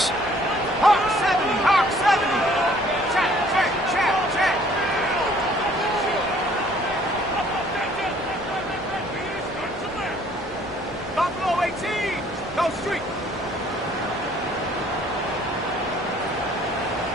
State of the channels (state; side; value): normal; both; correlation 0.58